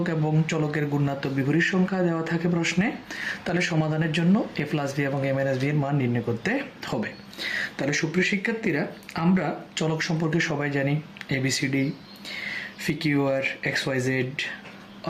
এবং চলকের গুণাত্মক বিপরীত সংখ্যা দেওয়া থাকে প্রশ্নে, তাহলে সমাধানের জন্য a+b এবং a-b এর মান নির্ণয় করতে হবে। তাহলে সুপ্রিয় শিক্ষার্থীরা, আমরা চলক সম্পর্কে সবাই জানি ABCD, PQR, XYZ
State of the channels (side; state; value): both; identical; correlation 1.00